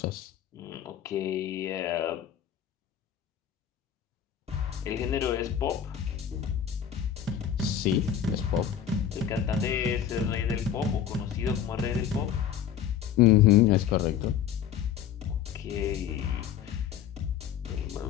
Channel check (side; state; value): right; quieter; 9.2 dB